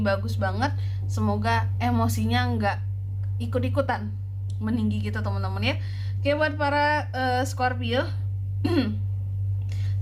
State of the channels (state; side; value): identical; both; correlation 1.00